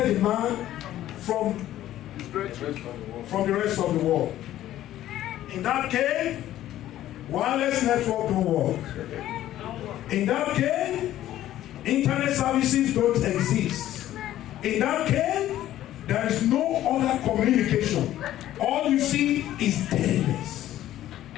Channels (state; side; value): quieter; right; 13.3 dB